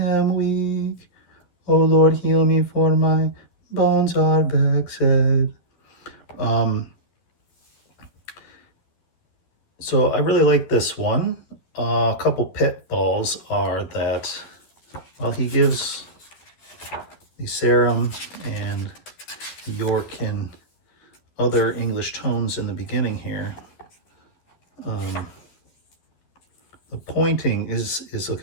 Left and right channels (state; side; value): late; right; 12 ms